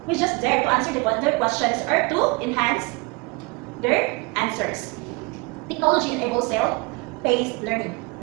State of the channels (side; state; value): left; quieter; 27.3 dB